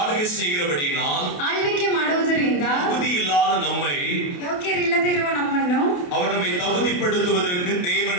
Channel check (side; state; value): right; late; 28 ms